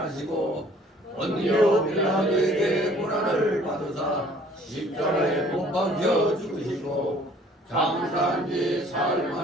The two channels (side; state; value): both; normal; correlation 0.55